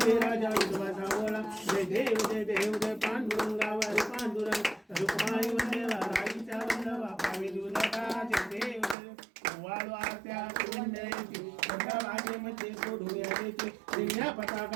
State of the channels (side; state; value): left; drops out; at 9.0 s